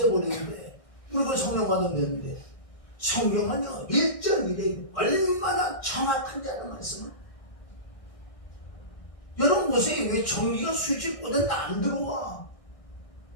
우리 그 성령 받으면 되는데. 성경은요, 1:1에 얼마나 정확한지는 말씀을. 여러분 보세요. 왜 전기가 스위치 꽂았는데 안 들어와?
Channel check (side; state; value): right; late; 1.6 ms